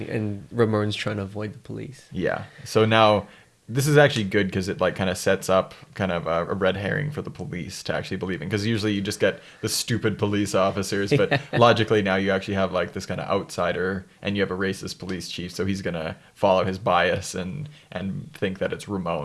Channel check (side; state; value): both; identical; correlation 1.00